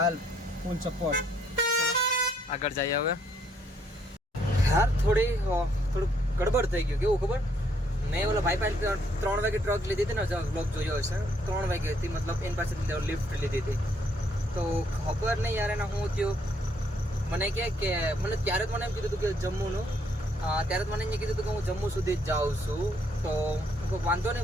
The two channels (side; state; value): both; normal; correlation 0.69